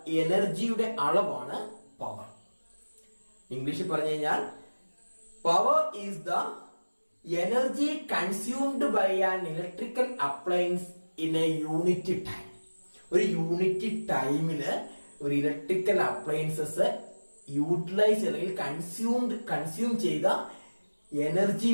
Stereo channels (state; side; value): inverted; both; correlation -1.00